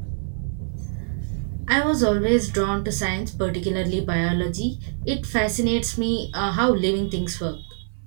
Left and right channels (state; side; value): silent; left; 62 dB below the other